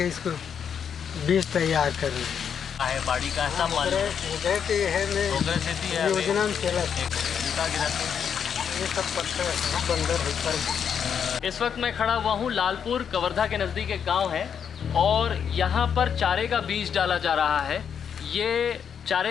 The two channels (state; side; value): quieter; right; 7.6 dB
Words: इसको बीज तैयार कर रहे हैं। है बाड़ी का ऐसा माल योजना में चला ये सब पत्थर बंदर ऊपर। इस वक्त मैं खड़ा हुआ हूँ लालपुर कवर्धा के नज़दीक एक गांव है और यहाँ पर चारे का बीज डाला जा रहा है। ये